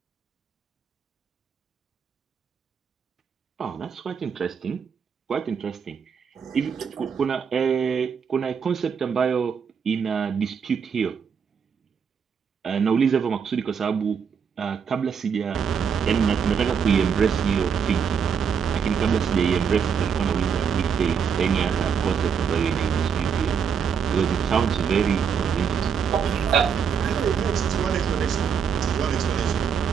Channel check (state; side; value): quieter; left; 6.9 dB